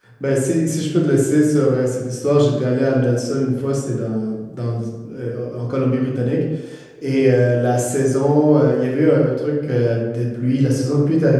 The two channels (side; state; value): both; identical; correlation 1.00